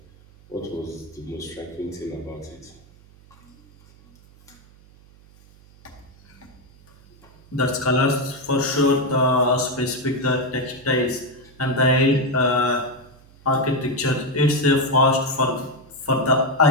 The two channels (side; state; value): right; noise; hum, 26 dB below the sound